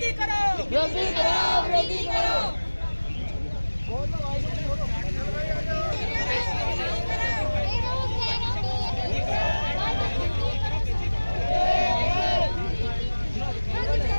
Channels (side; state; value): both; inverted; correlation -1.00